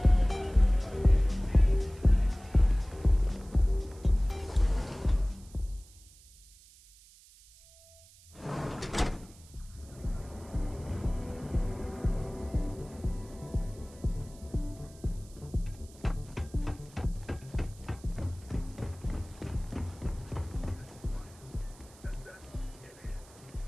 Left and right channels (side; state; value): right; noise; hiss, 24 dB below the sound